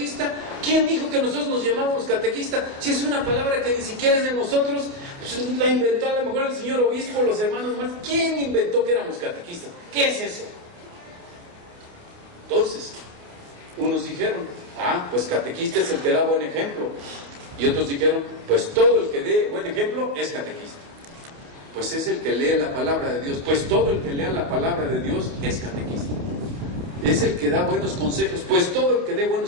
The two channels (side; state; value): left; late; 29 ms